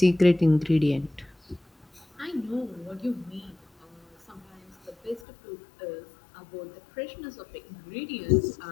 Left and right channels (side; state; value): right; drops out; at 5.2 s